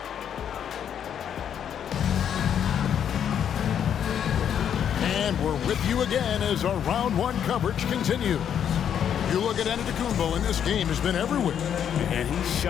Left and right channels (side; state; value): right; quieter; 8.9 dB